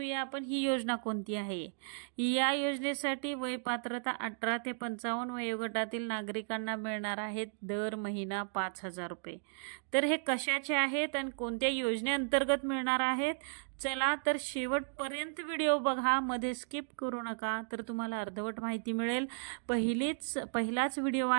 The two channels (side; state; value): left; silent; digital silence